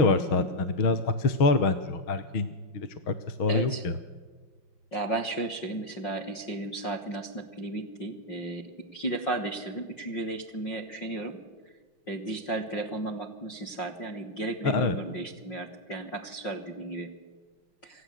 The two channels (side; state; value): right; late; 5.5 ms